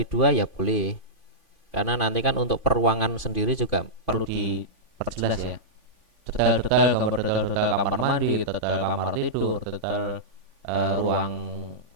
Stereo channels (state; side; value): late; left; 3.5 ms